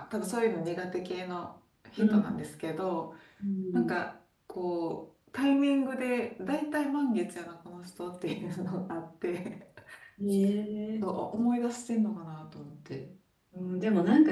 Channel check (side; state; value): both; identical; correlation 1.00